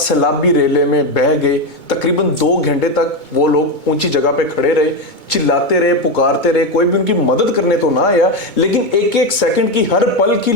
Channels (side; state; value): right; late; 2.2 ms